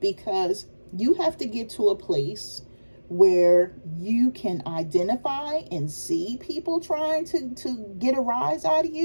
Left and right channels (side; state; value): both; inverted; correlation -1.00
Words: you have to get to a place where you can identify and see people trying to get a rise out of